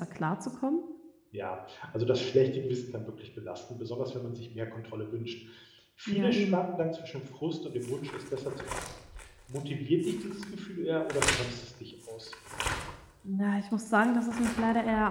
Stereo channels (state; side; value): identical; both; correlation 1.00